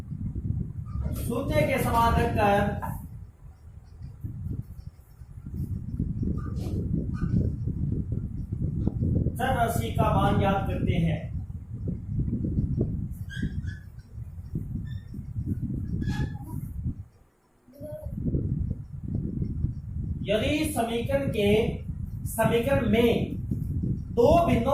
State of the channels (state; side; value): identical; both; correlation 1.00